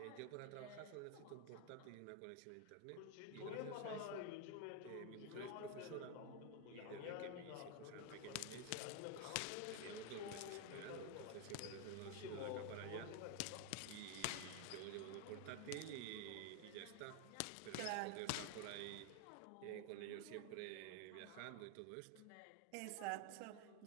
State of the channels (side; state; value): both; different; correlation 0.01